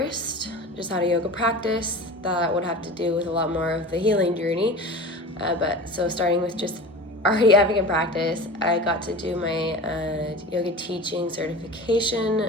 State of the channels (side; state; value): both; normal; correlation 0.34